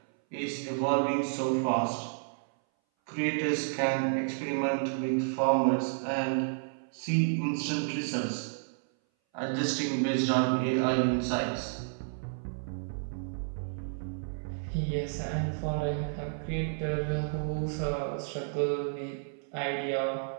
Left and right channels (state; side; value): silent; left; 57 dB below the other